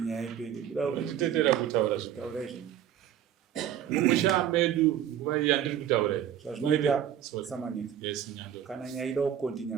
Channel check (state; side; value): quieter; left; 10.2 dB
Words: nyaya ipere. Kutetera kutaura zvitaura izvo. Mumusha medu nguva iyi yandiri kutaura zvazvinoita Samaneka. Yes, Nyandoro. Kana nyaya ida